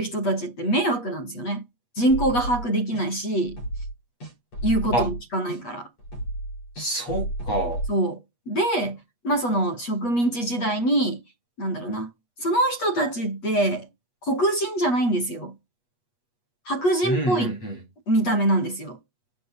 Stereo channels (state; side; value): late; right; 8.3 ms